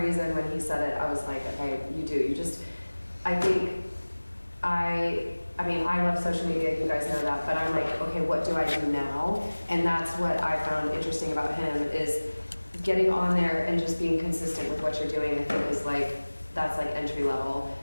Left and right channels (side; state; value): both; inverted; correlation -1.00